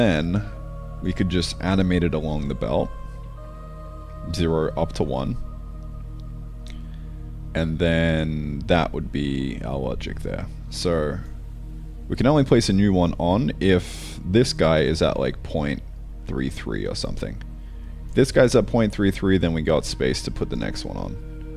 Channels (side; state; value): both; identical; correlation 1.00